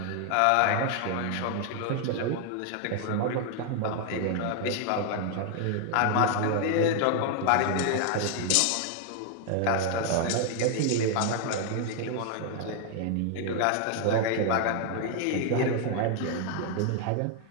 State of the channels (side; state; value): both; different; correlation 0.00